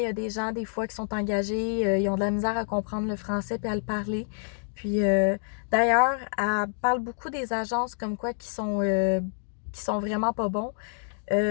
y a des gens, des fois, qui sont engagés, ils ont de la misère à comprendre le français puis à le parler. Puis, d'ailleurs, elle parle beaucoup des agences comme quoi qui sont vraiment pas bons.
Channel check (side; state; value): right; silent; digital silence